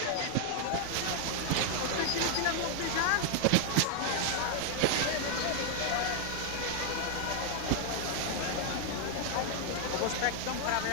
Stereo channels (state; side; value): different; both; correlation 0.00